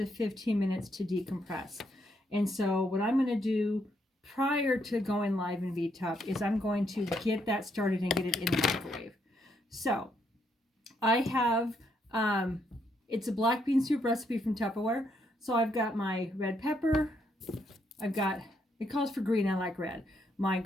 15 minutes to decompress. And so what I'm gonna do prior to going live in V-Tup is I'm going to get that started and get it in the microwave. So I have, it's a black bean soup recipe from Tupperware. So I've got my red pepper, I've got, it calls for green, I like red, my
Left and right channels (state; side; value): normal; both; correlation 0.75